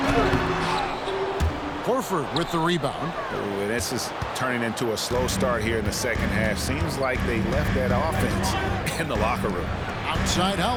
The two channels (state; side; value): identical; both; correlation 1.00